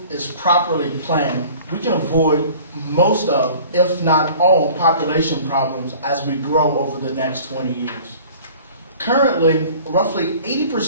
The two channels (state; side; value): inverted; both; correlation -0.47